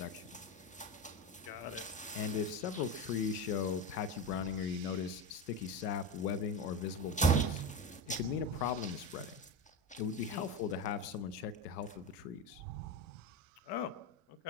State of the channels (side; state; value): both; normal; correlation 0.21